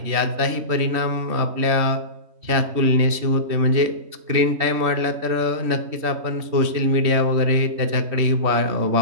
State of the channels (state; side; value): late; left; 3.1 ms